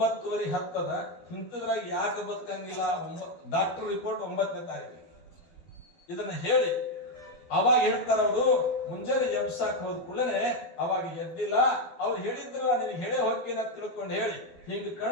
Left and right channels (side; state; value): right; late; 12 ms